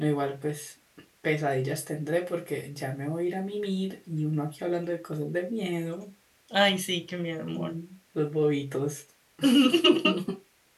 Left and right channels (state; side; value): identical; both; correlation 1.00